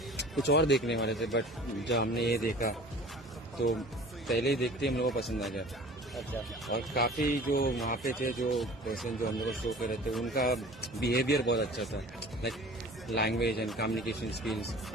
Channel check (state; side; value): normal; both; correlation 0.44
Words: कुछ और देखने वाले थे, बट जब हमने ये देखा तो पहले ही देखते ही हम लोग को पसंद आ गया। अच्छा, और काफ़ी जो वहाँ पे थे, जो पर्सन जो हम लोग को शो कर रहे थे, उनका बिहेवियर बहुत अच्छा था, like language and communication skills.